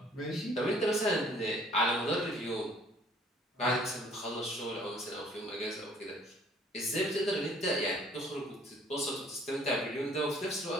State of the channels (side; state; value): both; normal; correlation 0.57